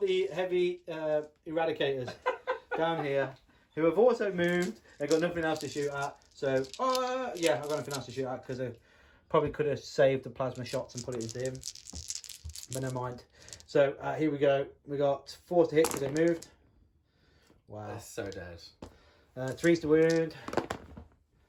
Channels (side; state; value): both; identical; correlation 1.00